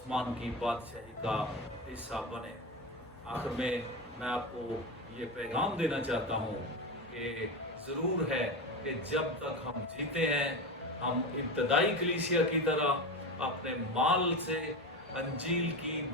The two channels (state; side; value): normal; both; correlation 0.21